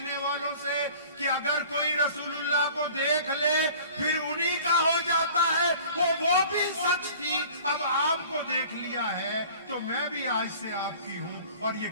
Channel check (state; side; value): inverted; both; correlation -0.46